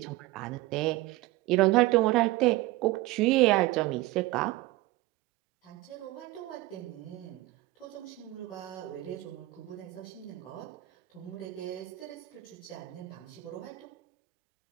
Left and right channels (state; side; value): quieter; left; 18.9 dB